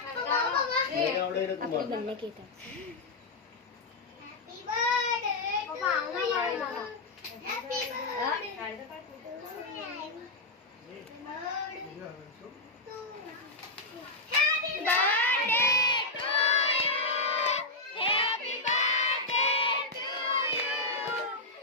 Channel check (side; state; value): right; quieter; 3.1 dB